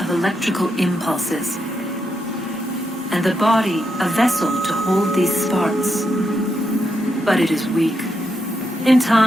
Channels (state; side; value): normal; both; correlation 0.83